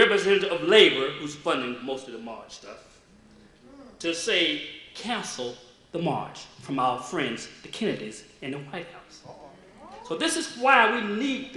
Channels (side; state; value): both; identical; correlation 1.00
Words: of labor, who's funding most of the march stuff, to say, cancel the march from our friends, the Kennedys, in the White House. So this is why we need